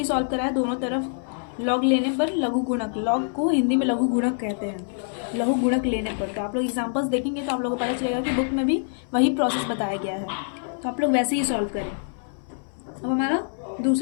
सॉल्व करा है, दोनों तरफ लॉग लेने पर लघु गुणक, लॉग को हिंदी में लघु गुणक कहते हैं, लघु गुणक लेने पर। तो आप लोग एग्जाम्पल्स देखेंगे तो आप लोगों को पता चलेगा कि बुक में भी वही प्रोसेस बताया गया है, तो आप लोग वैसे ही सॉल्व करें। अब हमारा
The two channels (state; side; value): silent; right; 59 dB below the other